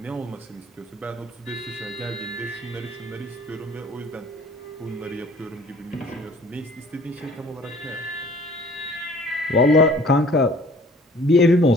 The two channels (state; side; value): normal; both; correlation 0.52